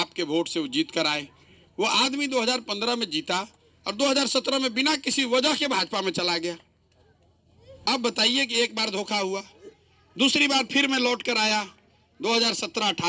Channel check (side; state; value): both; identical; correlation 1.00